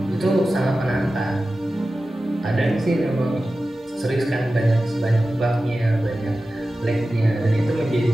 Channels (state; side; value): normal; both; correlation 0.94